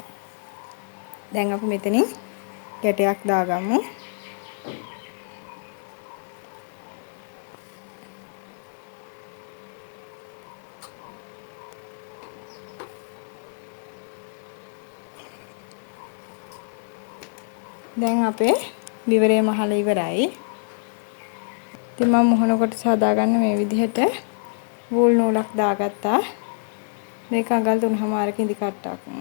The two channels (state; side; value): silent; right; digital silence